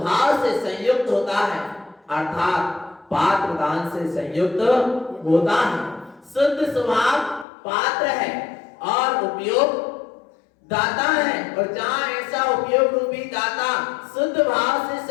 से संयुक्त होता है, अर्थात पात्र दान से संयुक्त होता है। शुद्ध स्वभाव पात्र है और उपयोग दाता है, और जहां ऐसा उपयोग रूपी दाता शुद्ध भाव से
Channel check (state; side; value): drops out; right; at 7.5 s